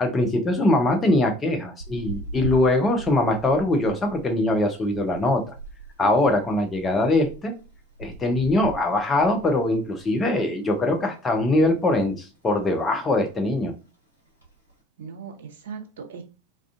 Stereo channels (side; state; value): both; normal; correlation 0.59